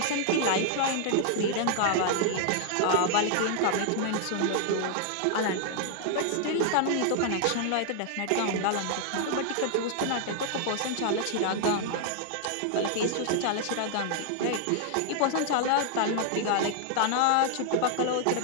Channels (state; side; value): different; both; correlation 0.00